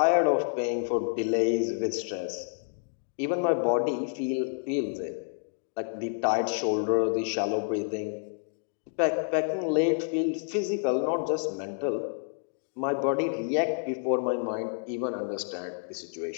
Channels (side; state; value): right; silent; digital silence